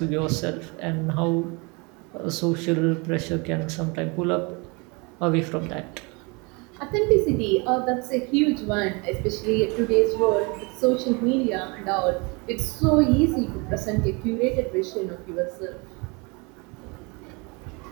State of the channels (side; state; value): left; quieter; 29.3 dB